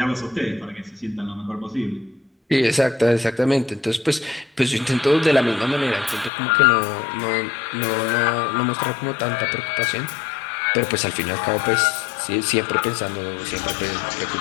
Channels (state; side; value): drops out; right; at 6.3 s